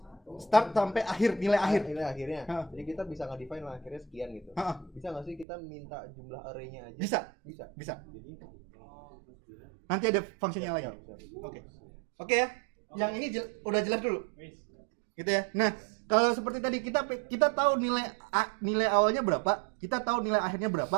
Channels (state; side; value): drops out; left; at 5.5 s